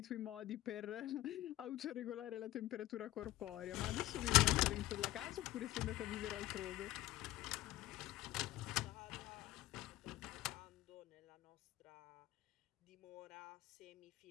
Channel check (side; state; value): right; quieter; 15.9 dB